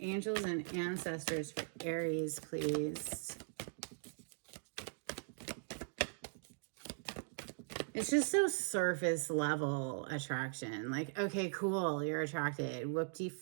and ancestors for Aries, please. It's just so surface level attraction. Like, okay, cool, you're attracted. Whoop-de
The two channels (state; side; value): silent; left; digital silence